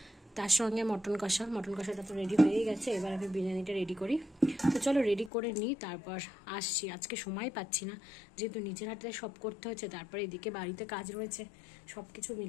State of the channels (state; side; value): drops out; right; at 5.3 s